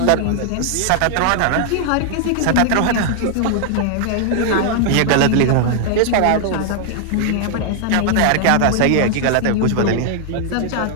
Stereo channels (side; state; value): both; different; correlation 0.00